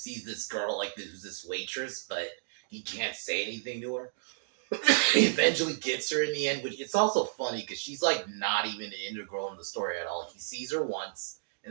this girl, like this waitress, but he can't say anything to her. He eventually gets her in the end, which it's also funny because she's like not even integral in the story at all. He sees her once,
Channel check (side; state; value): left; silent; digital silence